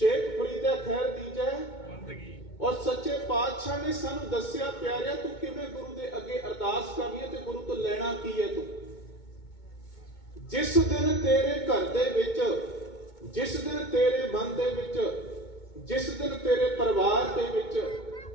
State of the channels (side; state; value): right; late; 2.2 ms